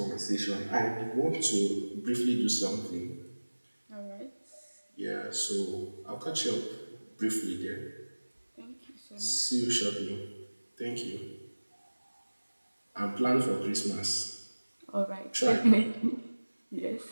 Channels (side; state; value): both; inverted; correlation -1.00